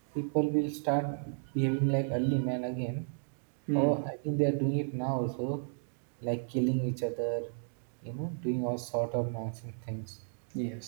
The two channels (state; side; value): silent; left; digital silence